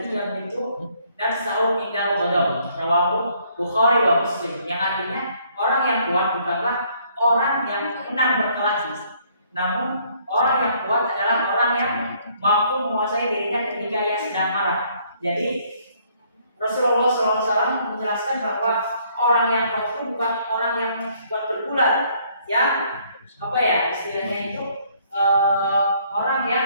yamliku nafsahu indal ghadab, rawahu Bukhari wa Muslim, yang artinya orang yang kuat bukanlah orang yang menang berkelahi, namun orang yang kuat adalah orang yang mampu menguasai dirinya ketika ia sedang marah. Jadi Rasulullah SAW menjelaskan bahwa orang yang kuat itu bukan orang yang kuat berbulan, yang istilahnya itu orang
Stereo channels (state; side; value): inverted; both; correlation -0.65